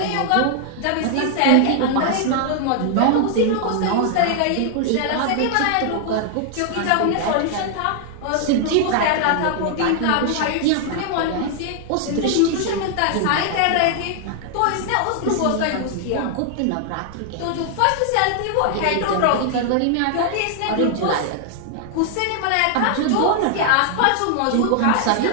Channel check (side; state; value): both; different; correlation 0.00